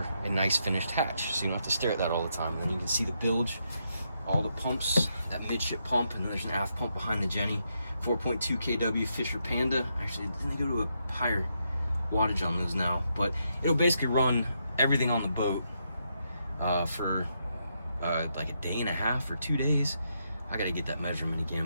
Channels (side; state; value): both; inverted; correlation -0.80